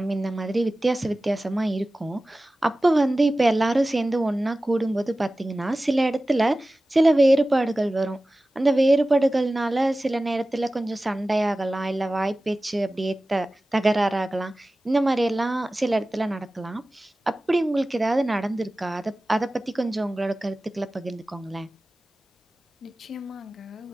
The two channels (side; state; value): both; normal; correlation 0.96